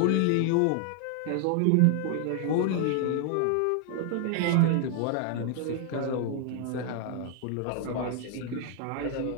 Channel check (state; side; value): different; both; correlation 0.00